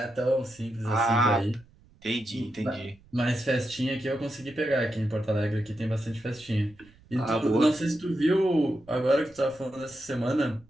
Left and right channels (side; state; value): right; noise; rumble, 28 dB below the sound